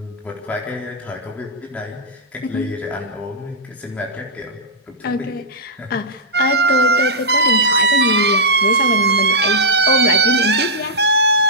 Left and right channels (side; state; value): both; normal; correlation -0.10